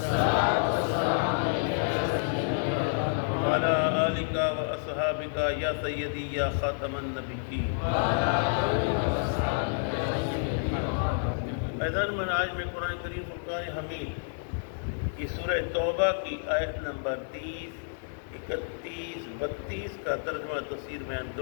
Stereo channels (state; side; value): silent; right; digital silence